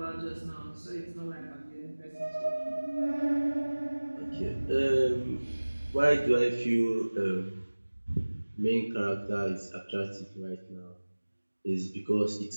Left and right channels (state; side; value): inverted; both; correlation -1.00